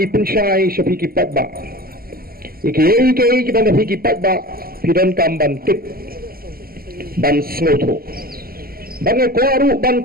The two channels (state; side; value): late; left; 0.43 ms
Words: ipunsyai sa pikipat ba iki kibang pikipat ba pidon kamban tip ban snoto bang kwaru ban